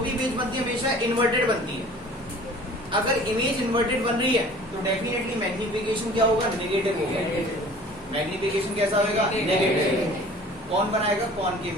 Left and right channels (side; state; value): both; normal; correlation 0.47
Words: भी इमेज बनती है हमेशा इन्वर्टेड बनती है। अगर इमेज इन्वर्टेड बन रही है तो डेफिनेटली मैग्निफिकेशन क्या होगा, नेगेटिव होगा। मैग्निफिकेशन कैसा होगा, नेगेटिव। कौन बनाएगा, concave